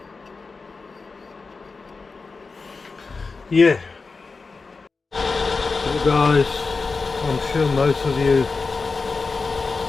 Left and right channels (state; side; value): quieter; right; 4.3 dB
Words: Yeah. So guys, I'm sure most of you